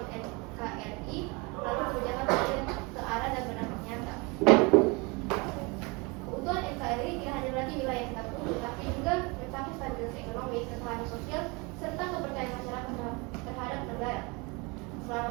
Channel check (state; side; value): quieter; left; 27.9 dB